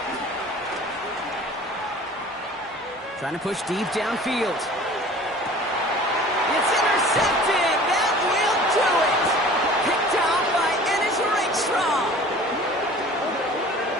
Trying to push deep downfield. It's intercepted. That will do it. Picked off by Ennis Rakestraw.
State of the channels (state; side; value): normal; both; correlation 0.45